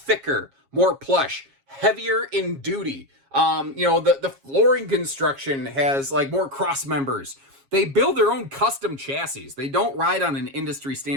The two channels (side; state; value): left; late; 7.3 ms